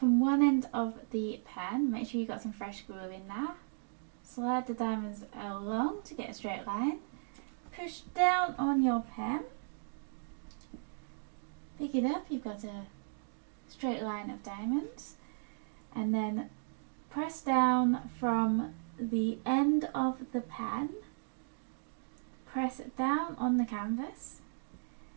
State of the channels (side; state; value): left; silent; digital silence